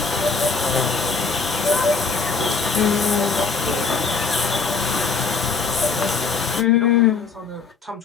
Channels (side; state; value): right; quieter; 4.8 dB